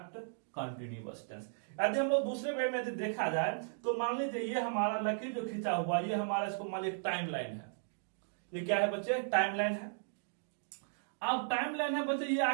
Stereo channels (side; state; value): left; silent; digital silence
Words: कंटिन्यूअस टेंस। यदि हम लोग दूसरे वे में यदि देखा जाए तो मान लीजिए ये हमारा लकीर जो खींचा हुआ, ये हमारा इसको मान लीजिए टाइम लाइन है। ये क्या है बच्चे, टाइम लाइन है। अब टाइम लाइन है बच्चे, ये